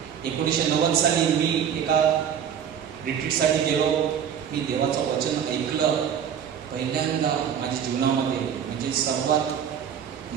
1990 साली मी एका रिट्रीटसाठी गेलो. मी देवाचं वचन ऐकलं पहिल्यांदा माझ्या जीवनामध्ये. म्हणजे सर्वात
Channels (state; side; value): quieter; left; 8.5 dB